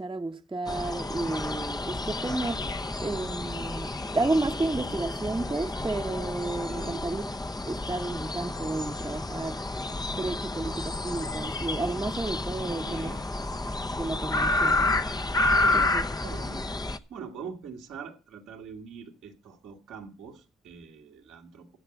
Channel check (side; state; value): both; normal; correlation 0.67